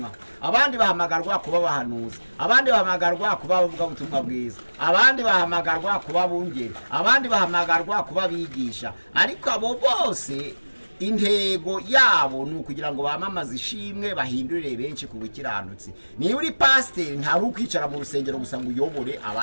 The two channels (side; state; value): both; inverted; correlation -1.00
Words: abandi bahamagarwa kuba bahanuzi, abandi bahamagarwa kuba bavuga ubutumwa bwiza, abandi bahamagarwa kuba bungeri, abandi bahamagarwa kuba bigisha. Ariko abo bose intego yabo ni ukugira ngo bamamaze ishimwe bahindurire benshi ku bukiranutsi. Niba uri pasiteri ntari ukwicara mu rusengero gusa ngo uyobore